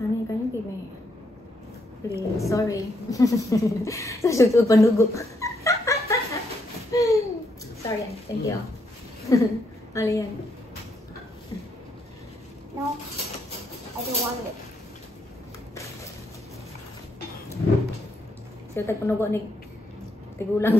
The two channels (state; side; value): normal; both; correlation 0.76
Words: can you give me? Please, sorry. Sa shoot panugo. Sorry, thank you. Alian. No, I don't want it. So, tagpanugo ni tigulang